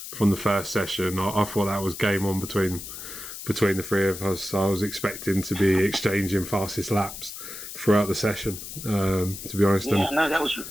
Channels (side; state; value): left; noise; hiss, 10 dB below the sound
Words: session, I thought that was game on between the three of us. I was expecting to be exchanging fastest laps throughout the session. To be honest, yeah, no, that was